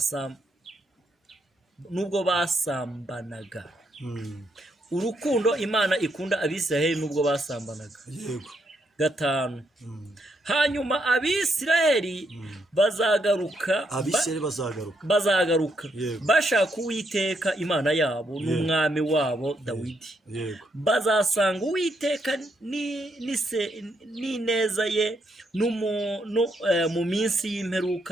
basambanaga. Urukundo Imana ikunda Abisiraheli nubwo basambanaga. Yego. 5. Hanyuma Abisiraheli bazagaruka. Bashaka Uwiteka Imana yabo n'umwami wabo Dawidi. Bazasanga Uwiteka n'ineza ye mu minsi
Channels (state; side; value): normal; both; correlation 0.77